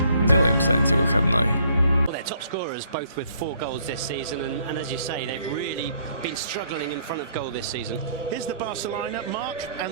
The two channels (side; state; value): both; inverted; correlation -0.65